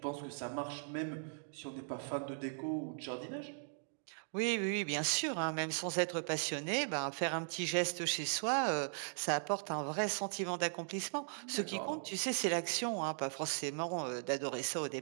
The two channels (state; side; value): silent; left; digital silence